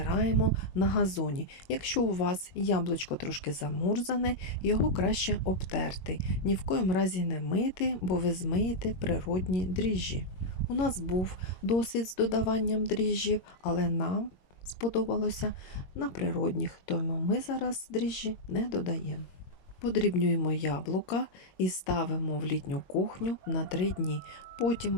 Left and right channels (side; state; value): right; late; 21 ms